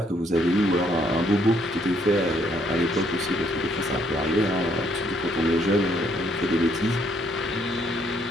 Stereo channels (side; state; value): both; normal; correlation 0.69